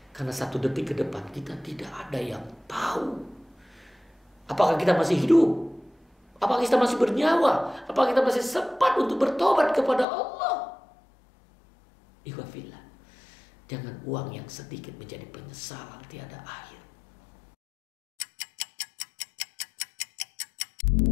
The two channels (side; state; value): right; drops out; at 10.1 s